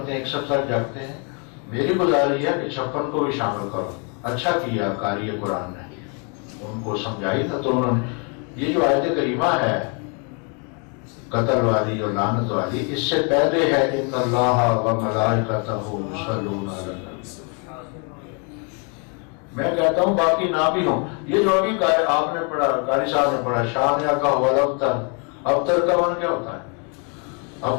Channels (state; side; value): quieter; right; 36.5 dB